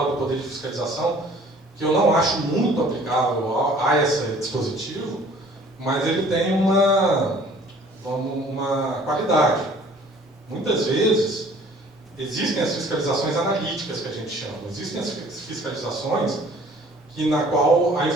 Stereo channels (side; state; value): both; normal; correlation 0.53